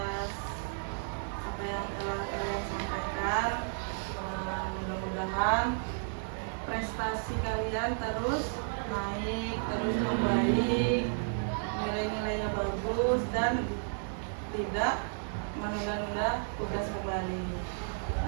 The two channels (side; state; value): left; silent; digital silence